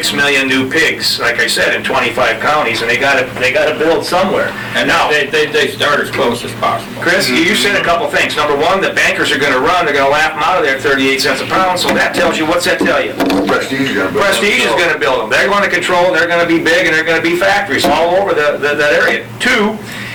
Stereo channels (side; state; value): both; identical; correlation 1.00